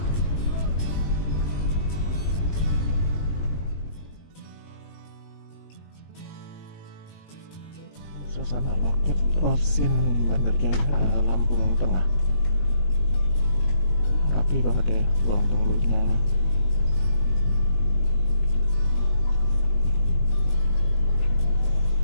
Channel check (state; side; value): late; right; 19 ms